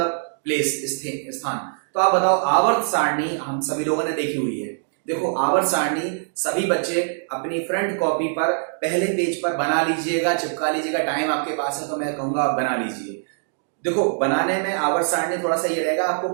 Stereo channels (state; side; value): silent; left; digital silence